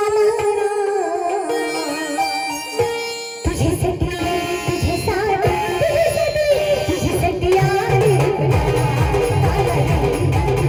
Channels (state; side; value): identical; both; correlation 1.00